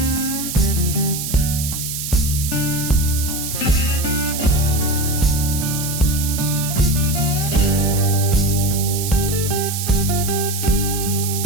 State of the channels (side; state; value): right; noise; hiss, 5 dB below the sound